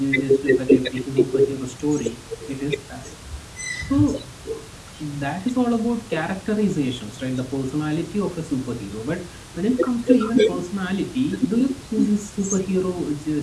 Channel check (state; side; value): identical; both; correlation 1.00